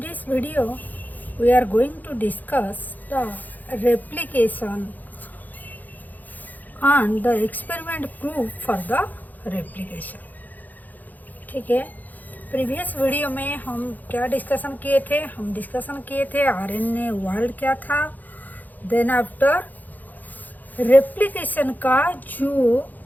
video we are going to discuss the replication and the experiment proof for the replication. ठीक है, प्रीवियस वीडियो में हम क्या डिस्कशन किए थे? हम डिस्कशन किए थे आरएनए वर्ल्ड क्या था, देन आफ्टर रेप्लिकेशन का जो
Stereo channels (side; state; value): right; late; 0.083 ms